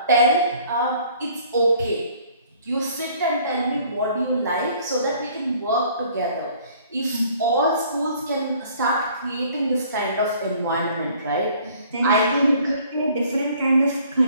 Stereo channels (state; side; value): inverted; both; correlation -0.56